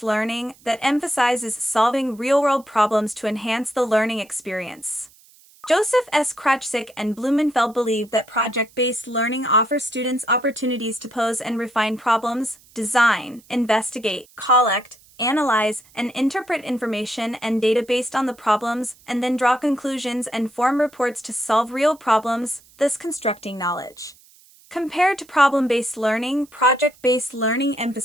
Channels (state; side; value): noise; right; hiss, 27 dB below the sound